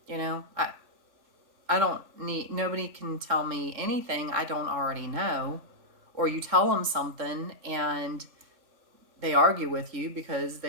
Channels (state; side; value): late; left; 3.7 ms